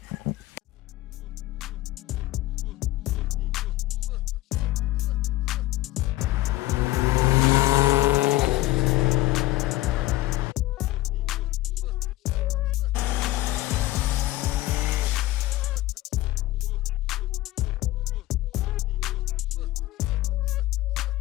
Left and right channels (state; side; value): quieter; right; 17.0 dB